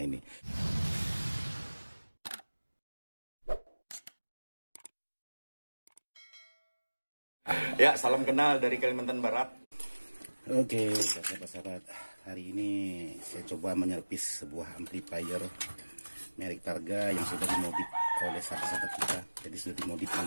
Ya, salam kenal dari Kalimantan Barat. Oke, sahabat-sahabat, hari ini saya coba menyervis sebuah amplifier merek Targa yang sudah dimodif oleh sahabat-sahabat kita. Jadi sudah dimodif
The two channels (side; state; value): both; inverted; correlation -1.00